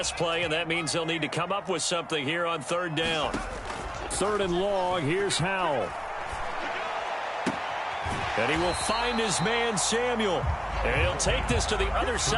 play, and that means they'll need to come up with something here on 3rd down. 3rd and long, here's Howell. And he will find his man, Samuel. And he'll take this to the other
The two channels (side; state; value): both; identical; correlation 1.00